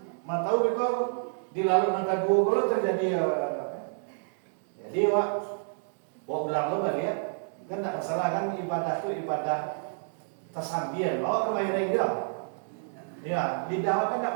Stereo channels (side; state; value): left; silent; digital silence